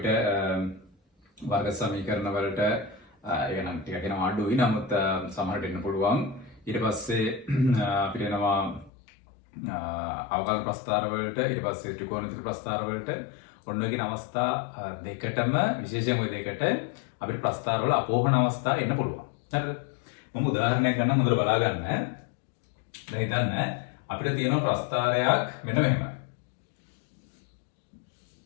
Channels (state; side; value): drops out; right; at 8.9 s